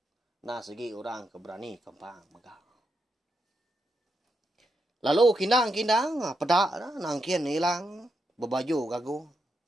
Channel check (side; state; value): both; normal; correlation 0.83